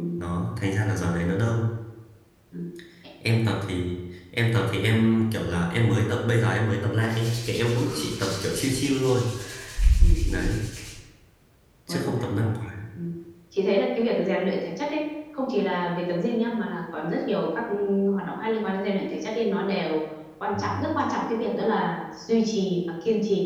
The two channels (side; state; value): both; identical; correlation 1.00